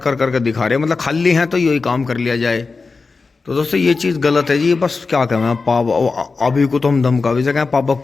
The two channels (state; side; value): quieter; right; 4.3 dB